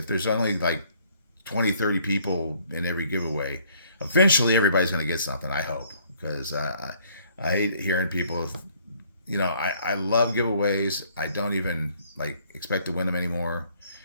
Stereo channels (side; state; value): both; inverted; correlation -0.62